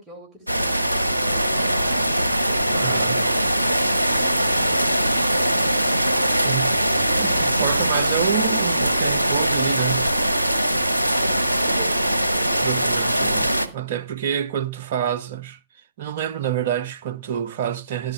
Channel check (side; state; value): both; inverted; correlation -0.83